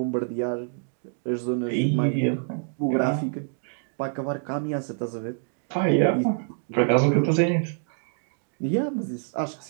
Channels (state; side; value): silent; left; 61 dB below the other